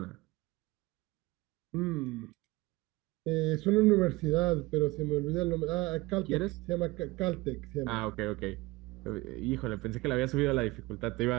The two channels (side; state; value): left; quieter; 21.3 dB